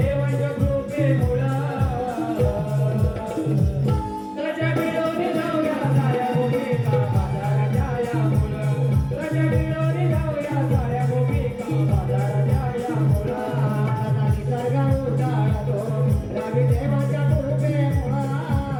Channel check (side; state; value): both; identical; correlation 1.00